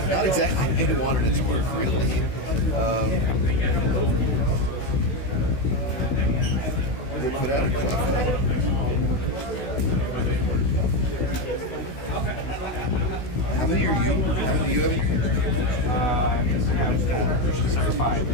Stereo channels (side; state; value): right; late; 16 ms